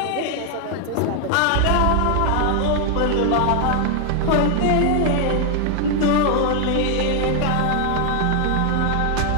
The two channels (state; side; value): different; both; correlation 0.00